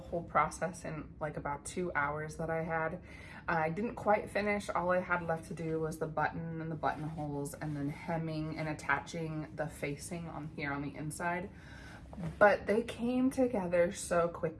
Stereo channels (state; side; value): identical; both; correlation 1.00